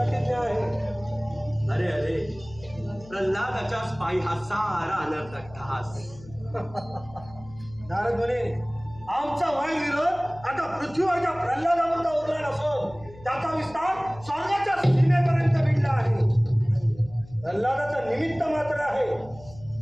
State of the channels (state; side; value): noise; left; hum, 20 dB below the sound